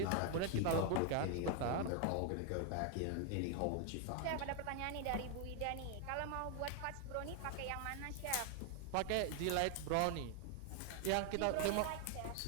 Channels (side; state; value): both; different; correlation 0.00